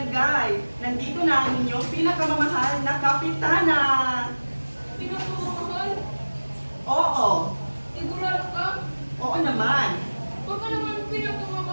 Nandito na ang inyong pinakamamahal na kapitana. Pinakamamahal? Oo, Sigurado ka? oo naman. Baka naman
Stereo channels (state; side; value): inverted; both; correlation -1.00